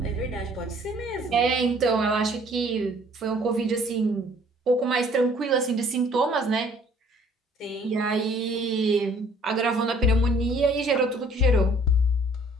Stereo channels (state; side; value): normal; both; correlation 0.57